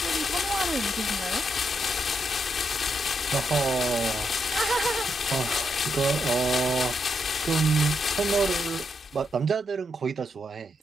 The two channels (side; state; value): both; normal; correlation 0.81